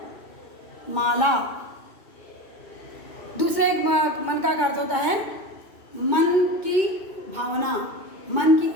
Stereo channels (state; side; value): late; right; 2.2 ms